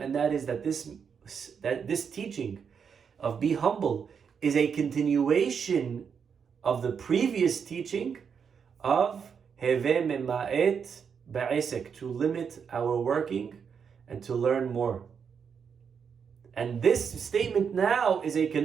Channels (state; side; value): quieter; left; 6.7 dB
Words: that is that this teaching of be humble is a continuation of the previous teaching of Heve mema'et ba'esek, to limit our working and to learn more. And this statement now is a